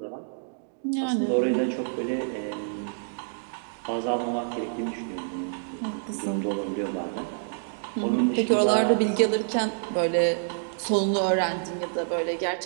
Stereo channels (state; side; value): silent; left; digital silence